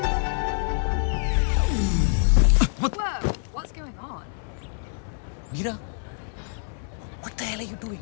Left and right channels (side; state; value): right; silent; 61 dB below the other